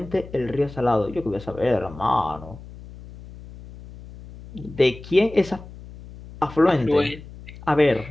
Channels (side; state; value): left; noise; hum, 16 dB below the sound